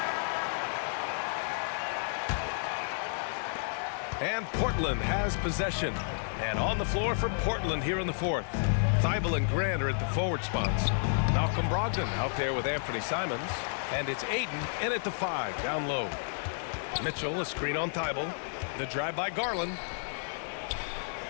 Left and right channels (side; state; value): right; silent; 57 dB below the other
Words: And Portland has possession. And on the floor for Portland here in the fourth. Thibault and Grant are at the forward spots. Malcolm Brogdon out there with Anthony Simons. And it's Ayton in at the 5, down low. Mitchell, a screen on Thibault. The drive by Garland.